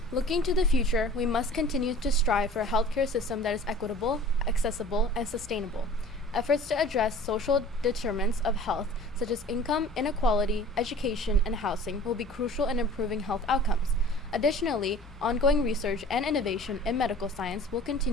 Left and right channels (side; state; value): both; normal; correlation 0.45